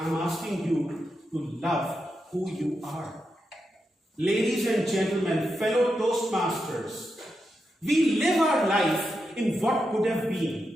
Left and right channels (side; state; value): both; normal; correlation 0.86